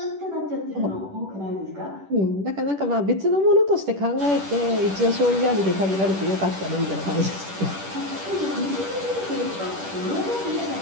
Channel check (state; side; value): late; left; 10 ms